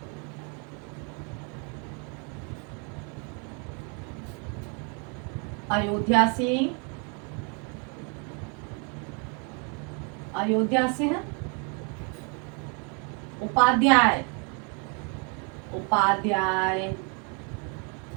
अयोध्या सिंह, अयोध्या सिंह उपाध्याय, उपाध्याय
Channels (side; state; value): left; quieter; 36.2 dB